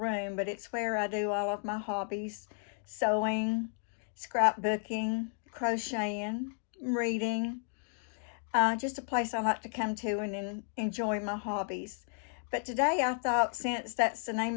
but it's where I do all of my hobbies: sewing, scrapbooking, crocheting, reading. Just a place I like to come to and enjoy my hobbies. But today I thought, since that's the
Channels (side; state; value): right; silent; 56 dB below the other